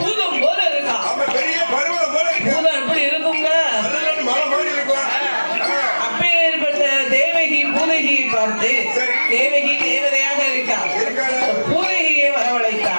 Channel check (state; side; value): inverted; both; correlation -1.00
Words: போல இருக்கா. பூதம் எப்படி இருக்குங்க? அப்பேற்பட்ட தேவகி பூதகியை பார்த்து தேவகி தேவதையாக இருக்கா. பூதகியை